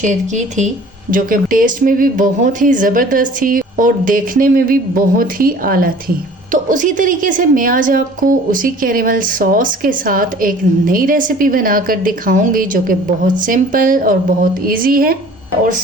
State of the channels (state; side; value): normal; both; correlation 0.48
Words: की थी, जो कि टेस्ट में भी बहुत ही ज़बरदस्त थी और देखने में भी बहुत ही आला थी। तो उसी तरीके से मैं आज आपको उसी कैरेमल सॉस के साथ एक नई रेसिपी बनाकर दिखाऊंगी, जो कि बहुत सिंपल और बहुत इजी है और